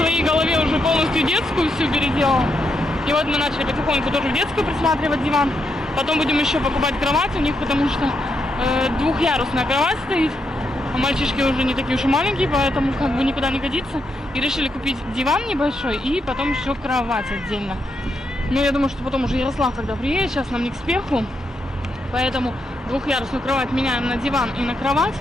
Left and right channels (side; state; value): both; normal; correlation 0.81